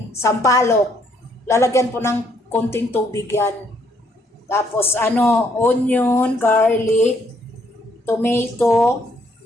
sampalok. Lalagyan po ng konting tubig yan. Tapos onion, garlic, tomato,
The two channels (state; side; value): normal; both; correlation 0.69